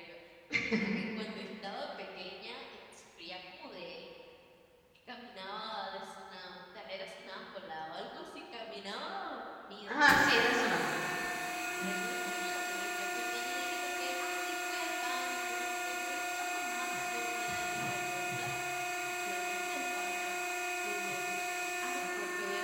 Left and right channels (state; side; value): identical; both; correlation 1.00